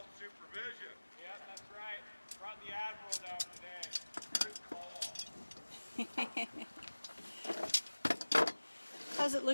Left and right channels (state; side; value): inverted; both; correlation -1.00